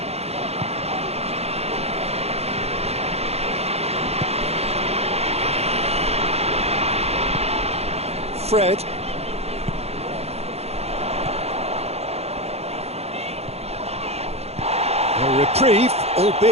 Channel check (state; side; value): late; left; 0.30 ms